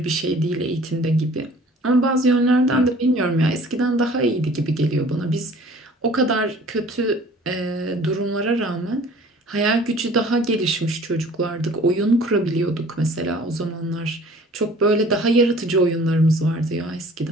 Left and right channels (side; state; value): both; normal; correlation 0.50